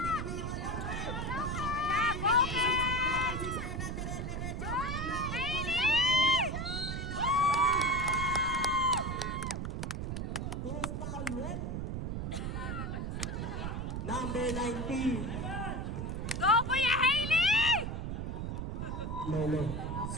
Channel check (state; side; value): noise; right; rumble, 3 dB below the sound